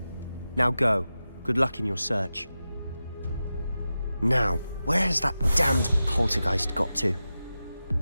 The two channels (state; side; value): inverted; both; correlation -0.93